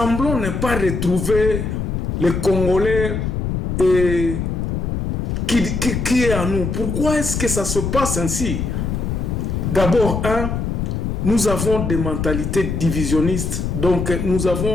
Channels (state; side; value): noise; left; rumble, 2 dB below the sound